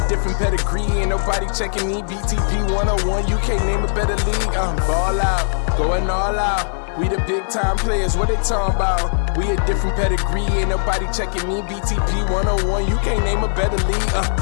different pedigree, ain't nobody checking me. BTP 101, you can't name a better league. Ball out, going all out. We the big time players, what they talking about? We a different pedigree, ain't nobody checking me. BTP 101, you can't name a better league.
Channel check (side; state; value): right; silent; 66 dB below the other